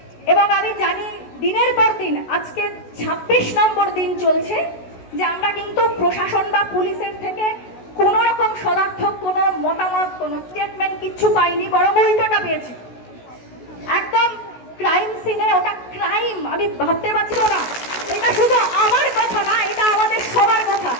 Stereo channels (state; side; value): late; right; 16 ms